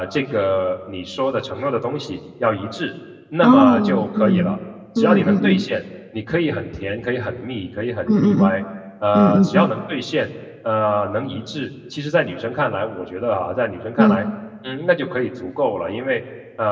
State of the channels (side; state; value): both; identical; correlation 1.00